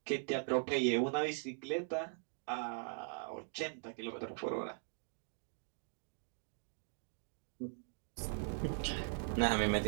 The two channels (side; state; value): left; silent; digital silence